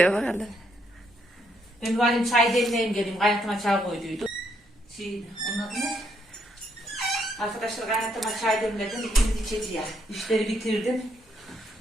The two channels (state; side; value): normal; both; correlation 0.74